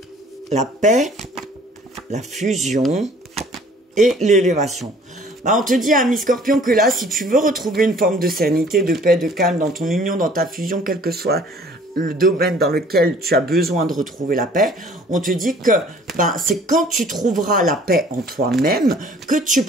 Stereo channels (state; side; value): normal; both; correlation 0.53